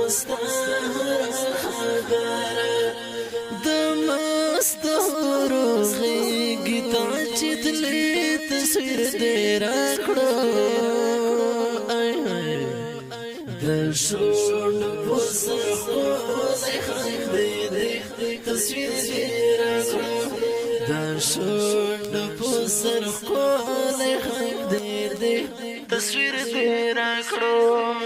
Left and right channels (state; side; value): identical; both; correlation 1.00